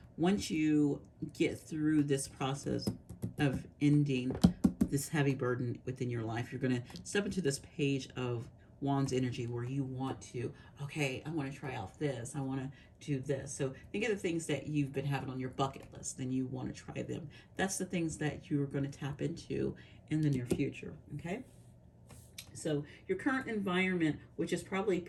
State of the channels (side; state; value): both; identical; correlation 1.00